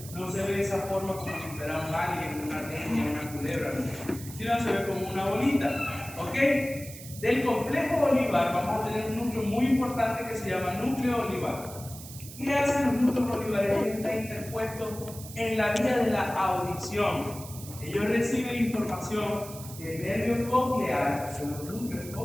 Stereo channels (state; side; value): noise; right; hiss, 14 dB below the sound